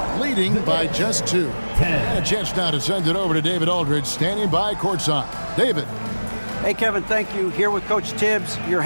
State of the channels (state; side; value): inverted; both; correlation -1.00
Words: leading by just 2. And a chance now to send it over to David Aldridge standing by courtside. David. Hey, Kevin, thank you. Here with Coach Tibbs. You're